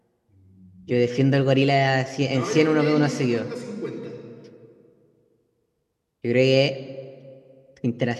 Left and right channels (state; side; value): identical; both; correlation 1.00